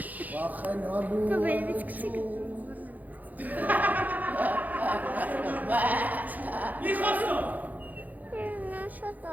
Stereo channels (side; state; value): left; late; 0.081 ms